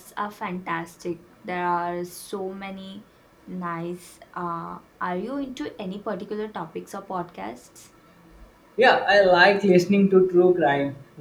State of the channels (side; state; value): both; identical; correlation 1.00